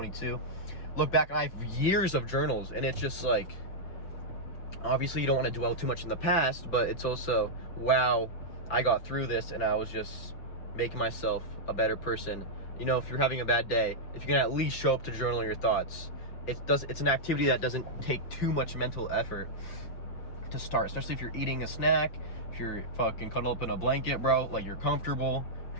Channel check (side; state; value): right; late; 5.9 ms